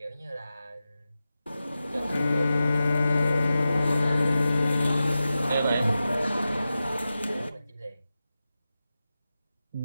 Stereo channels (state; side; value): inverted; both; correlation -0.93